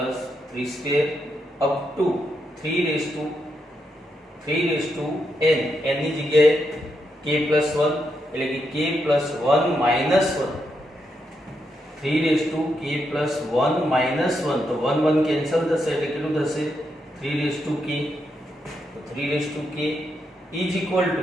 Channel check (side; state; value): both; normal; correlation 0.82